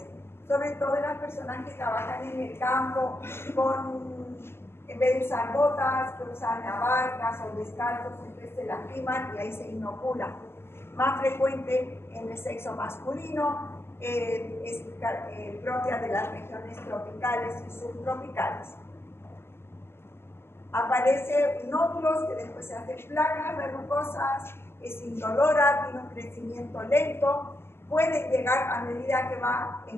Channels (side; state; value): right; late; 0.12 ms